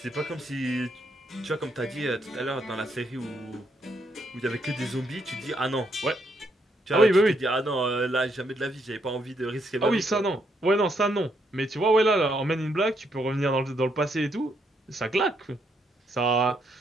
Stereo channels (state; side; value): normal; both; correlation 0.75